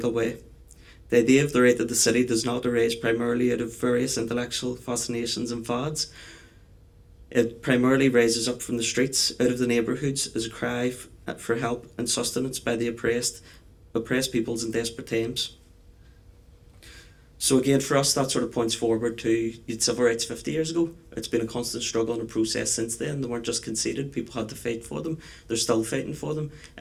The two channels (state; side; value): identical; both; correlation 1.00